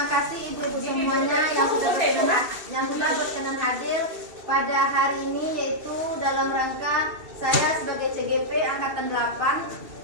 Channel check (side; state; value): left; late; 2.7 ms